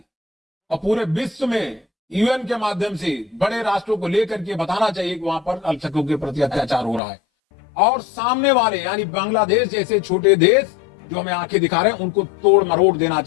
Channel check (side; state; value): right; drops out; at 7.0 s